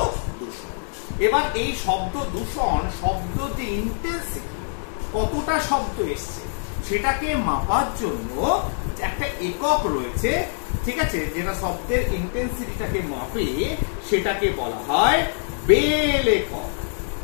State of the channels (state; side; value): silent; right; digital silence